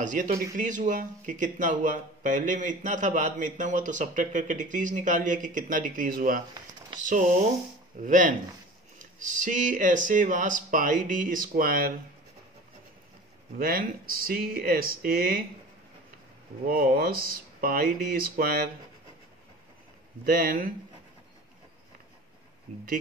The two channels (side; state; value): both; normal; correlation 0.39